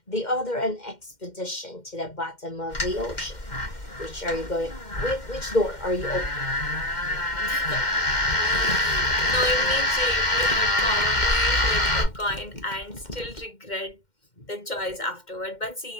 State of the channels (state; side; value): late; right; 2.1 ms